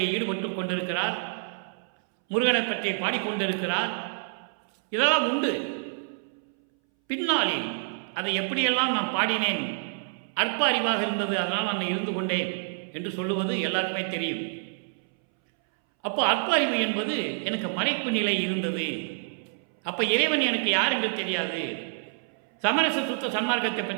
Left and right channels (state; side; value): silent; left; 60 dB below the other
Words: ஈடுபட்டு கொண்டிருக்கிறார். முருகனை பற்றி பாடிக்கொண்டிருக்கிறார். இதெல்லாம் உண்டு. பின்னாளில் அதை எப்படியெல்லாம் நான் பாடினேன், அற்ப அறிவாக இருந்தது, அதனால் நான் இருந்து கொண்டேன் என்று சொல்லுவது எல்லாருக்குமே தெரியும். அப்போ அற்ப அறிவு என்பது எனக்கு மறைப்பு நிலை இருந்தது. அப்போ இறைவன் எனக்கு யார் என்று தெரியாது, சமரச சுத்த சன்மார்க்கத்தை